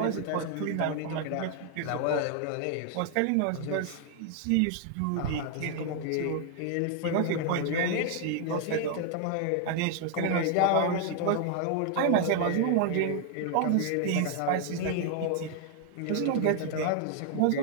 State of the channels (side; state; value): both; different; correlation 0.00